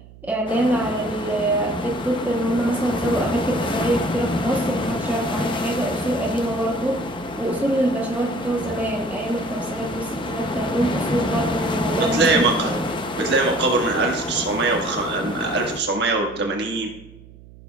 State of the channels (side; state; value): right; noise; hum, 21 dB below the sound